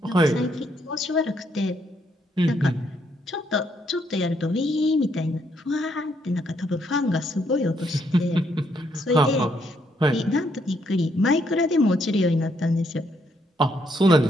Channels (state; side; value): normal; both; correlation 0.73